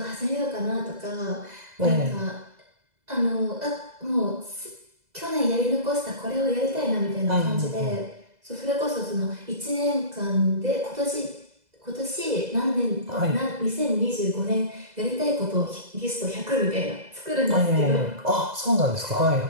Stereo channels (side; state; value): left; late; 2.0 ms